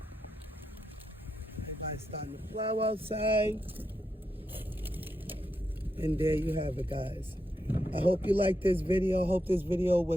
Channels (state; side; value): normal; both; correlation 0.84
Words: Everybody's starting to plow outside. And there you have it, guys. I hope you liked this video. I hope this video